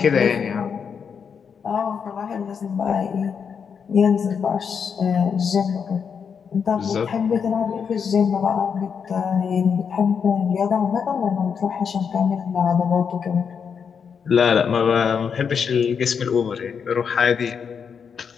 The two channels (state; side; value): quieter; right; 6.6 dB